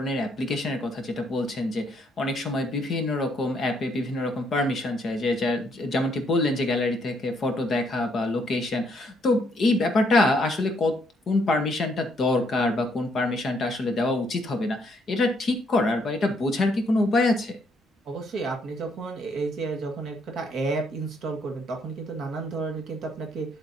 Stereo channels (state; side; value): normal; both; correlation 0.71